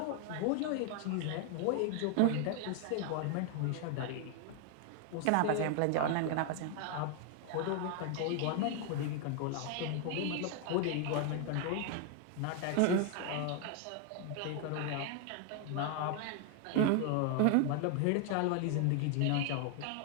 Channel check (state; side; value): different; both; correlation 0.00